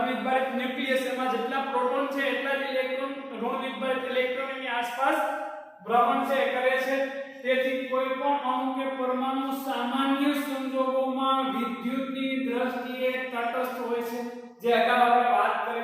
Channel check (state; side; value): identical; both; correlation 1.00